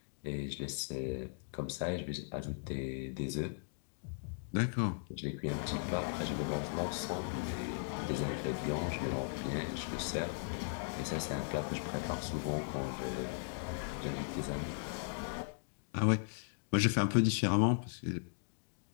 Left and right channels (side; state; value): right; silent; digital silence